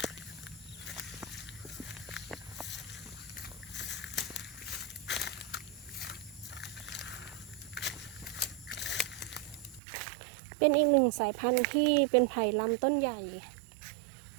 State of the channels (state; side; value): drops out; left; at 9.8 s